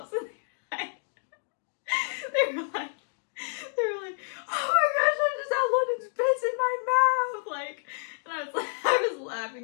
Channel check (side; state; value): right; silent; digital silence